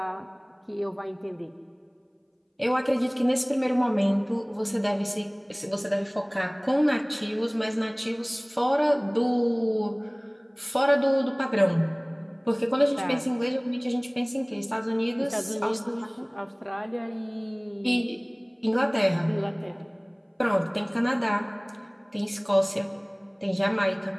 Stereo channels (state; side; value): identical; both; correlation 1.00